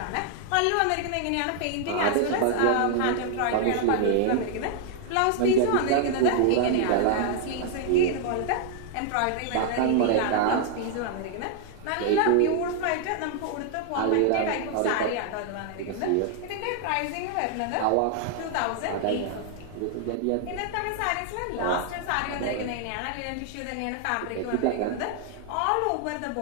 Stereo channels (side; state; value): both; different; correlation 0.00